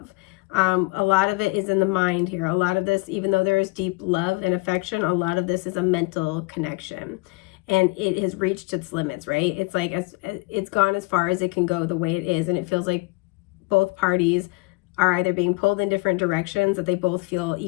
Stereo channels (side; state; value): right; quieter; 25.9 dB